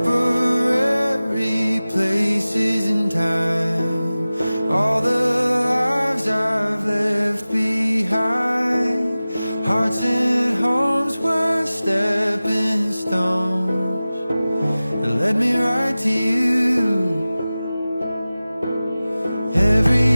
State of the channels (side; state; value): both; inverted; correlation -0.97